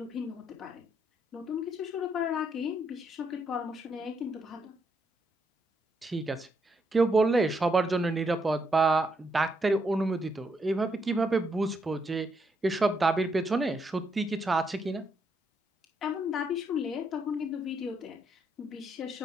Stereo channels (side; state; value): both; normal; correlation 0.77